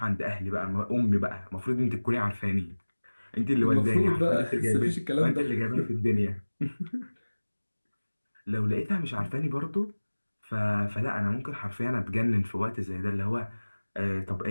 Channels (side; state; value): both; inverted; correlation -1.00